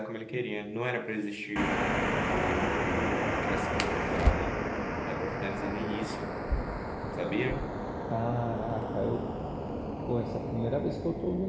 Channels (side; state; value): both; identical; correlation 1.00